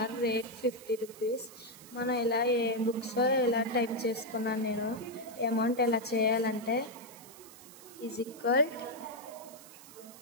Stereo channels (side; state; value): right; noise; hiss, 19 dB below the sound